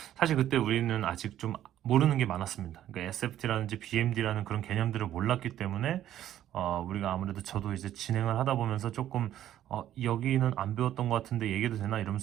사실 그때 우리는 아직 좀 모르는 게 많았습니다. 그러니까 SFT라든지 BMD라는 그런 개념들을 몰랐기 때문에 우리가 아무래도, 저도 이제 진행을 하다 보면서 조금 여기는 안 배웠던 것 같은데 얘기도 되나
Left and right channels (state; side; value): quieter; left; 12.0 dB